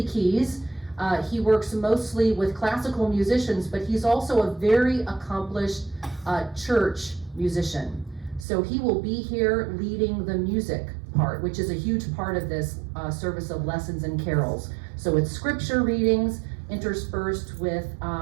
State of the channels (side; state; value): left; drops out; at 8.5 s